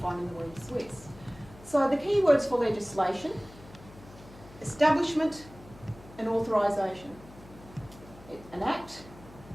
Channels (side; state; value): left; noise; hum, 20 dB below the sound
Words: in the Word Swiss. So the key words for legislation: establishment and authorisation. An act